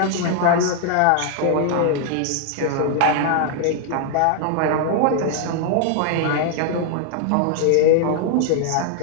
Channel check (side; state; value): both; different; correlation 0.00